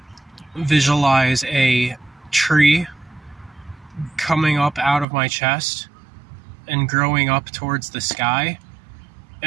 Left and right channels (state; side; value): drops out; left; at 5.1 s